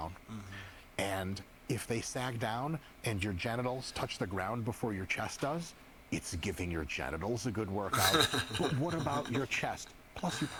And if they sag down and your genitals touch the ground before your chest does, it's giving your genitals a good workout. But what about your chest? Plus, you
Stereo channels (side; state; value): both; identical; correlation 1.00